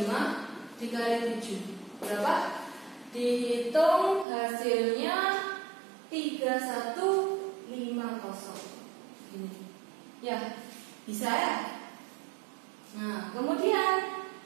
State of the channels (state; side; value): drops out; left; at 4.2 s